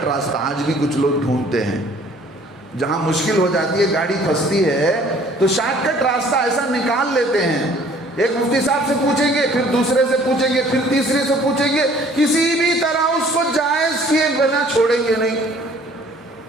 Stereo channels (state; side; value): normal; both; correlation 0.55